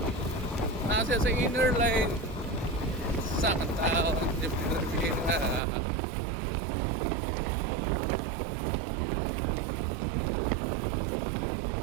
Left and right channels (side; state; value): left; drops out; at 5.6 s